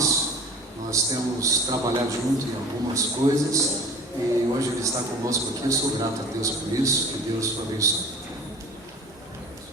Nós temos trabalhado junto em algumas coisas e hoje ele está conosco aqui. Eu sou grato a Deus por isso. Que Deus o abençoe.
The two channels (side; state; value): both; normal; correlation 0.43